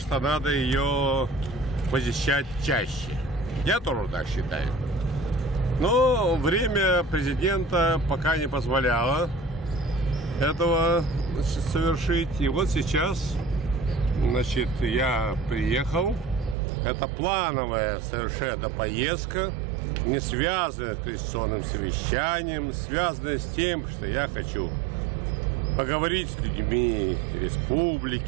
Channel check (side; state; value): left; drops out; at 16.6 s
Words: надо ее посещать чаще. Я тоже так считаю. Но время президента пока не позволяло этого совершить. И вот сейчас, значит, я приехал. Это плановая совершенно поездка, не связанная с конституционным совещанием, связанная с тем, что я хочу поговорить с людьми